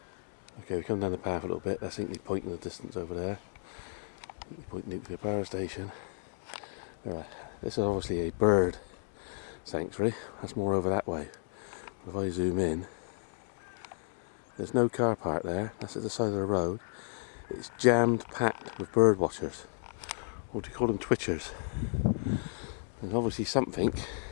Okay, we come down the path a little bit. That's Hinkley Point in the distance over there. Hinkley Point Nuclear Power Station. Alright, this is obviously a bird sanctuary. That's more over that way. But if I zoom in, there's no car park there. That's at the side of the road. It's jammed packed with bird watchers. Or do you call them twitchers? There's obviously something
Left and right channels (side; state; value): right; silent; 56 dB below the other